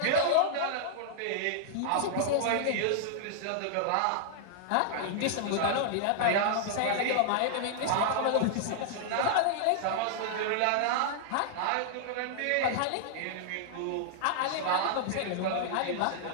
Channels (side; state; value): both; different; correlation -0.01